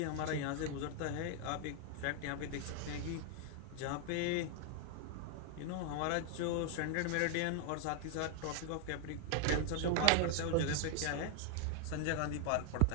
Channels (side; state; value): both; different; correlation 0.00